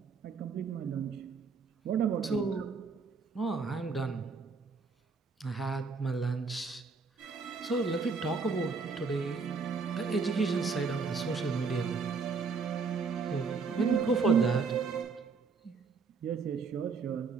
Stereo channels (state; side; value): quieter; left; 4.9 dB